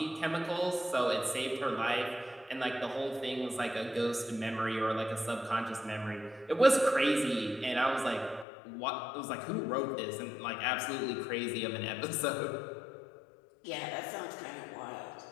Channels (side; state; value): right; drops out; at 8.5 s